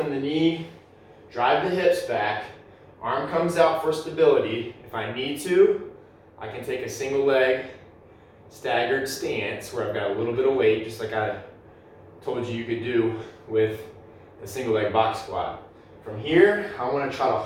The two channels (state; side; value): identical; both; correlation 1.00